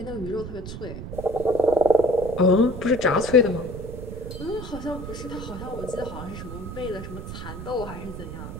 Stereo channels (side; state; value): right; noise; rumble, 9 dB below the sound